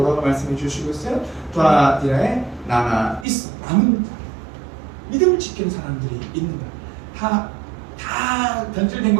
말씀해 주시고 있어요? 두아디라에 나가 있어 남은 믿음을 지키는 사람들이 있는다. 다 변질된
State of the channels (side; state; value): left; drops out; at 3.2 s